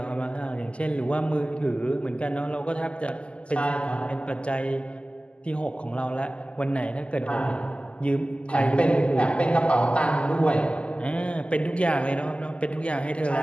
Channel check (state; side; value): late; right; 0.055 ms